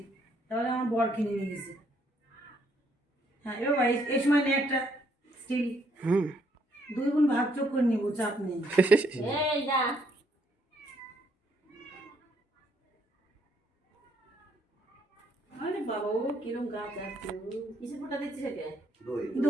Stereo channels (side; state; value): both; normal; correlation 0.70